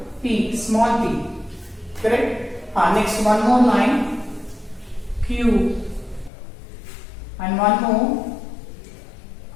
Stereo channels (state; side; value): drops out; right; at 6.3 s